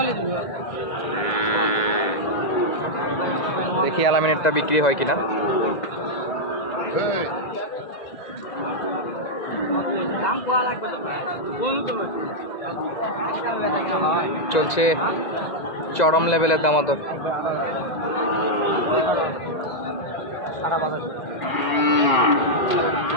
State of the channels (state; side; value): late; right; 2.0 ms